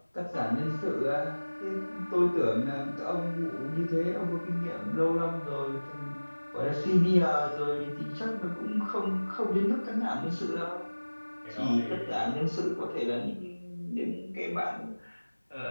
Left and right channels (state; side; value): inverted; both; correlation -1.00